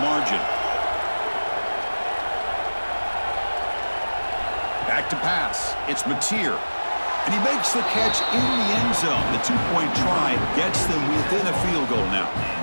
margin. Back to pass. It's Mateer. And he makes the catch in the end zone. The 2-point try gets them within a field goal now.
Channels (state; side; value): inverted; both; correlation -1.00